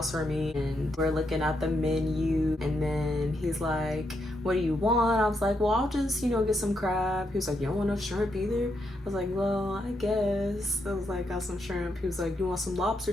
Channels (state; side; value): normal; both; correlation 0.80